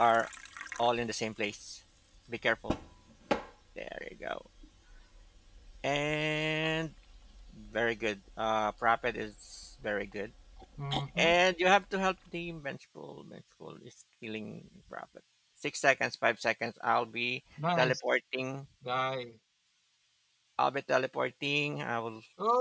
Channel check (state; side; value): identical; both; correlation 1.00